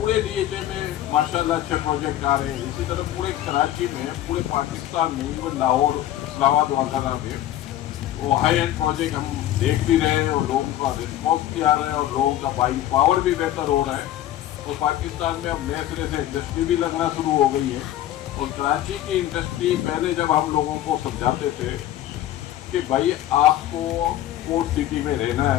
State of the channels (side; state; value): right; quieter; 13.1 dB